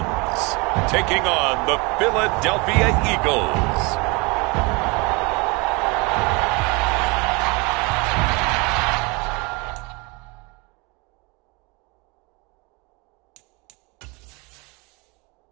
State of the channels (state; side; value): quieter; left; 27.9 dB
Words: taking on the Philadelphia Eagles.